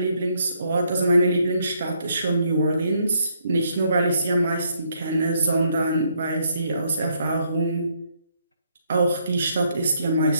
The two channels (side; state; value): both; inverted; correlation -0.72